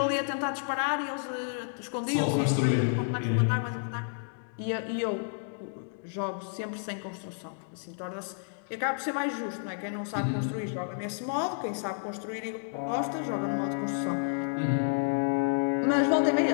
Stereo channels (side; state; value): right; silent; digital silence